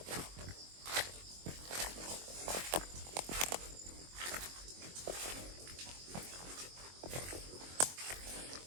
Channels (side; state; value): left; late; 22 ms